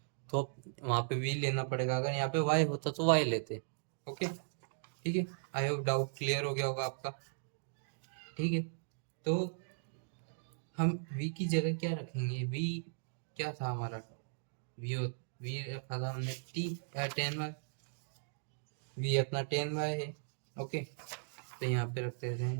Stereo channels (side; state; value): left; silent; digital silence